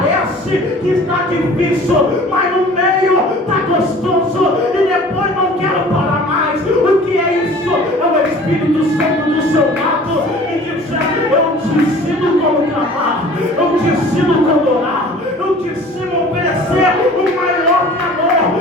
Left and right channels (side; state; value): both; normal; correlation 0.46